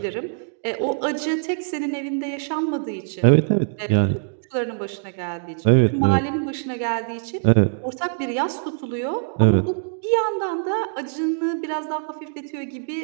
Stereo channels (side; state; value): left; silent; digital silence